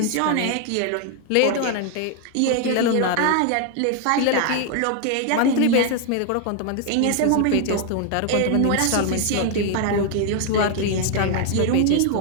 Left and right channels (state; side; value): different; both; correlation 0.00